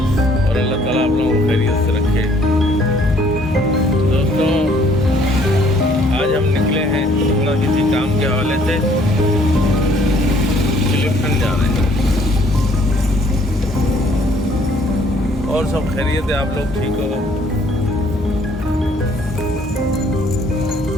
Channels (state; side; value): normal; both; correlation 0.61